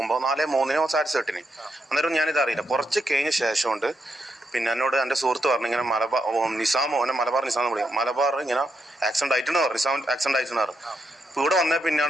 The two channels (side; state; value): both; normal; correlation 0.82